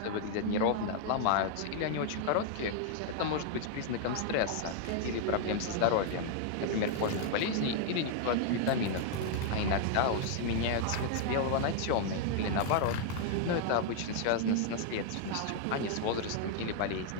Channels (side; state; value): both; different; correlation 0.00